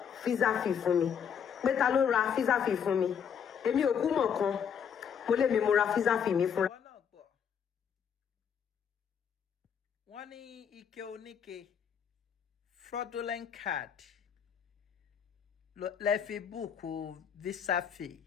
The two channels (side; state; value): right; quieter; 7.7 dB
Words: visa fee fún mi. Pé ta ló ra visa fee fún mi? Èmi ò kú mọ̀ kan. Mo lè mi mo ra visa fee mi fúnra. wọ́n ní ike oníke fraudulent card lẹ fi búùkù visa fee.